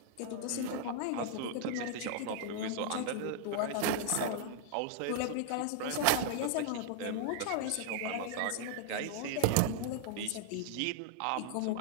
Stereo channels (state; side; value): different; both; correlation 0.00